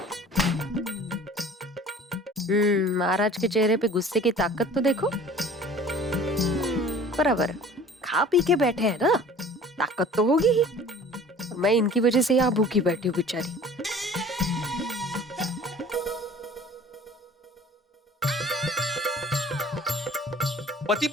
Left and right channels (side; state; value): both; normal; correlation 0.46